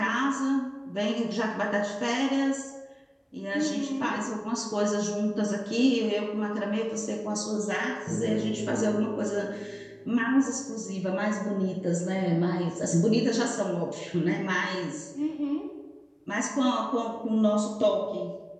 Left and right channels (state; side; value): identical; both; correlation 1.00